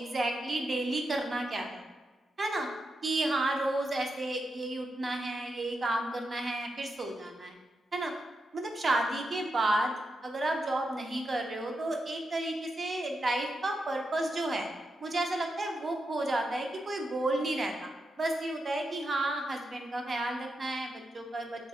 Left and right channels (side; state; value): both; normal; correlation 0.86